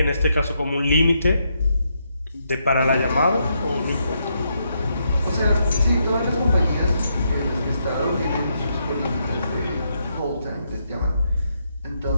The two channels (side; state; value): both; inverted; correlation -0.79